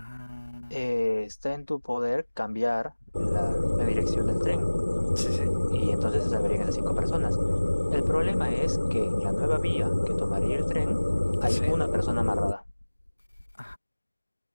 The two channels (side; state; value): both; inverted; correlation -1.00